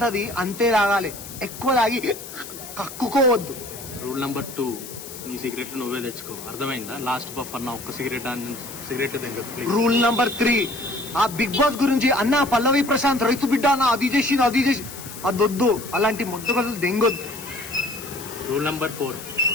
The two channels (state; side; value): noise; left; hiss, 13 dB below the sound